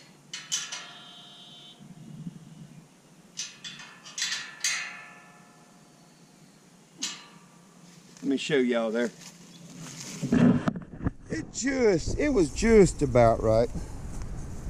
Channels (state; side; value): identical; both; correlation 1.00